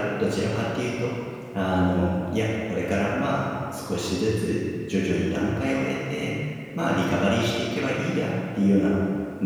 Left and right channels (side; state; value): both; identical; correlation 1.00